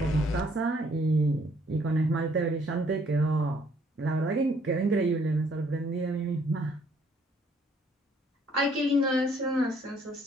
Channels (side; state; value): both; normal; correlation 0.64